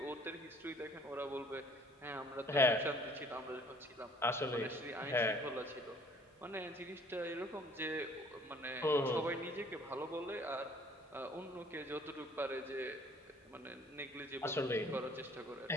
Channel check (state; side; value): normal; both; correlation 0.55